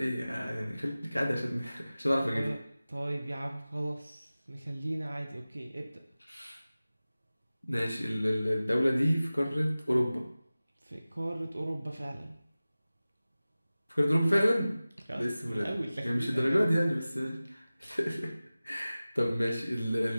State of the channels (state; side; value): inverted; both; correlation -0.97